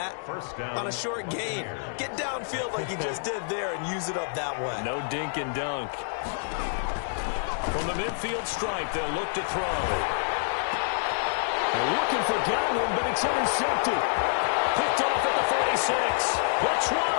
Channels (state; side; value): silent; right; digital silence